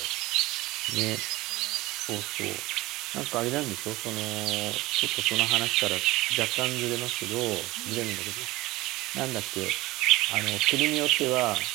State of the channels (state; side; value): quieter; left; 19.3 dB